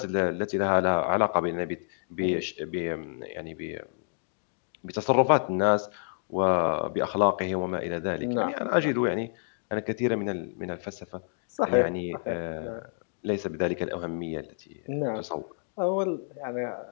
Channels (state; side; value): silent; right; digital silence